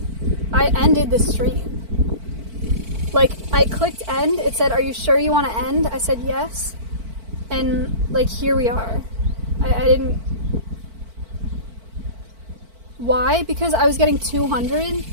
I ended the stream. Like, I clicked end, it said, are you sure you want to end? I said yes, and like, here we are. I didn't... Why? Because I was getting 200,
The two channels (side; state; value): left; late; 4.5 ms